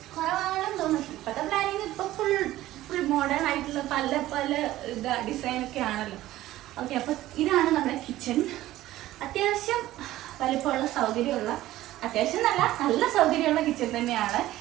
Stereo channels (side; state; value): left; quieter; 15.3 dB